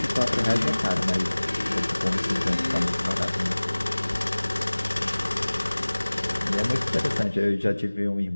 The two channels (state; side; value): inverted; both; correlation -1.00